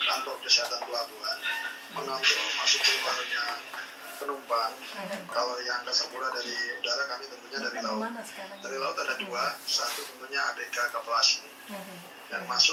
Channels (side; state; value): both; identical; correlation 1.00